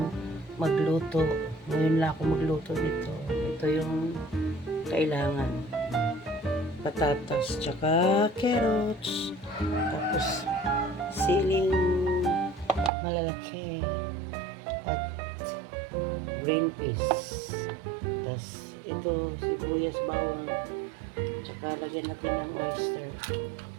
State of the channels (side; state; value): left; drops out; at 12.9 s